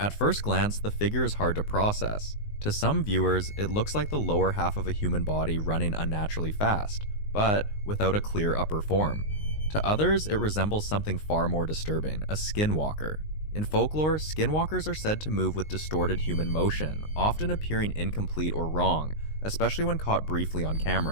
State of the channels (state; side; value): late; right; 19 ms